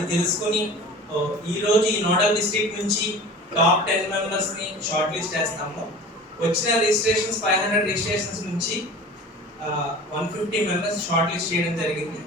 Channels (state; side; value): normal; both; correlation 0.39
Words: తెలుసుకుని ఈరోజు ఈ నోడల్ డిస్ట్రిక్ట్ నుంచి టాప్ 10 మెంబర్స్ని షార్ట్ లిస్ట్ చేస్తాము. వచ్చిన రిజిస్ట్రేషన్స్ 500 రిజిస్ట్రేషన్స్ నుంచి 150 మెంబర్స్ షార్ట్ లిస్ట్ చేయడం జరిగింది.